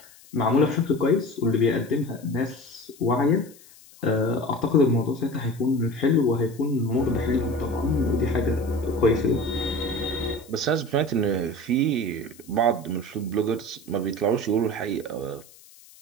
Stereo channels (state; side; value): noise; left; hiss, 24 dB below the sound